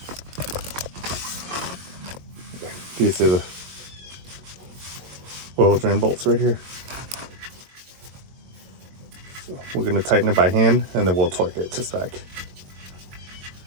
Do you see the oil drain bolts right here? So we're going to tighten it by hand and then we'll torque it to spec.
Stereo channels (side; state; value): left; late; 22 ms